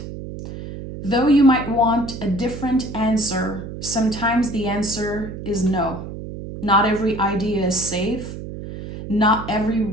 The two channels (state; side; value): noise; right; hum, 10 dB below the sound